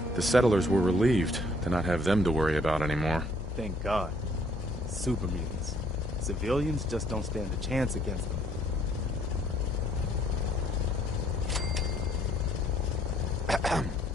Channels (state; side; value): normal; both; correlation 0.64